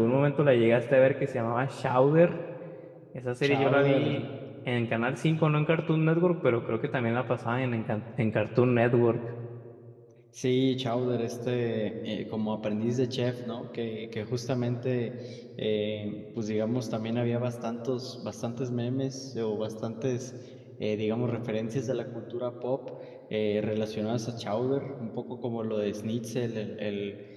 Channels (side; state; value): both; identical; correlation 1.00